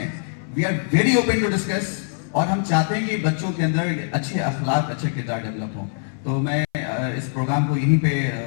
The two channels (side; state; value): right; silent; 61 dB below the other